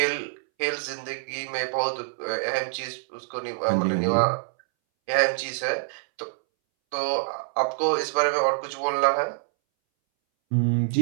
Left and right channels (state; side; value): silent; left; 61 dB below the other